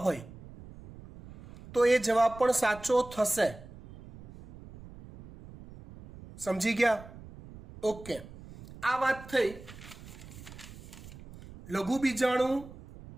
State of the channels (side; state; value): right; noise; rumble, 17 dB below the sound